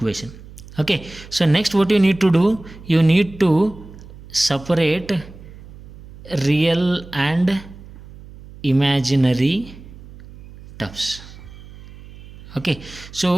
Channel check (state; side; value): noise; right; hum, 18 dB below the sound